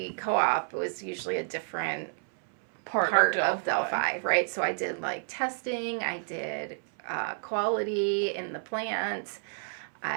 co-op was usually a different part of Delphi, right? So I did testing, I did quality in the plant,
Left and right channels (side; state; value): left; silent; 58 dB below the other